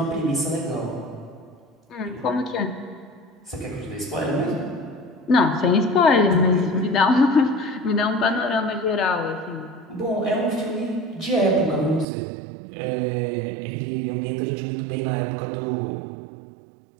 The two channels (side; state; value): left; drops out; at 12.1 s